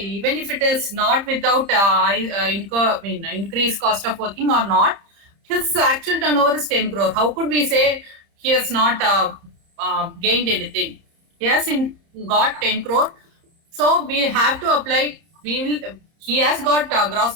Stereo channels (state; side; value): late; left; 30 ms